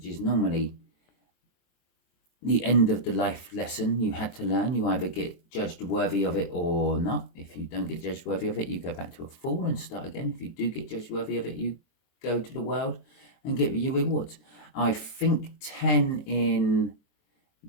is normally the end of the life lesson you had to learn. You either get judged worthy of it or not. If you don't get judged worthy of it, you go back to a fool and start again. If you do get judged worthy of it, you go to the world and get your rewards. I think 10 in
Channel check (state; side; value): late; right; 23 ms